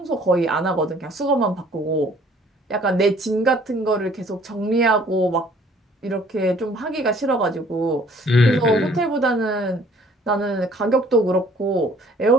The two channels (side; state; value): both; normal; correlation 0.57